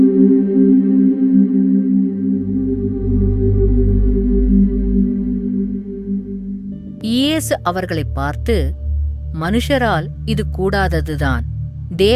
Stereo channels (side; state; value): both; identical; correlation 1.00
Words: இயேசு அவர்களை பார்த்து, மனுஷரால் இது கூடாததுதான்,